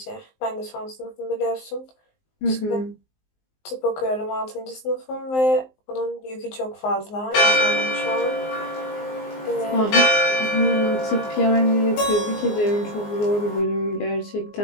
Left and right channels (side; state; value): right; late; 19 ms